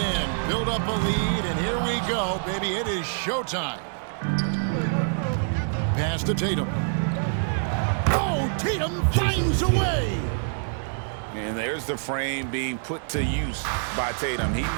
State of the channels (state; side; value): silent; left; digital silence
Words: Build up a lead, and here we go, baby. It is showtime. Pass to Tatum. Oh, Tatum finds a way. And there's the frame being put to use by Tatum. He